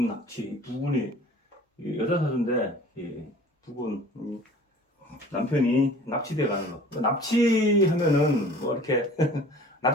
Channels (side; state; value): both; normal; correlation 0.46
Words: 납치, 부군이 여자 사주인데, 부군, 남편이 납치돼 가는 거. 납치하면은 뭐 이렇게